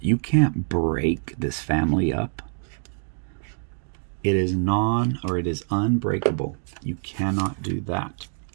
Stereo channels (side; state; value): left; silent; 58 dB below the other